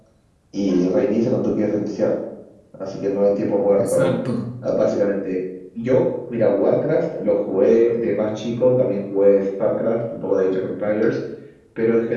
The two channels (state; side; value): identical; both; correlation 1.00